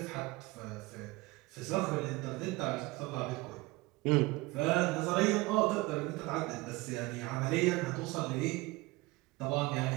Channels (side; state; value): left; quieter; 21.9 dB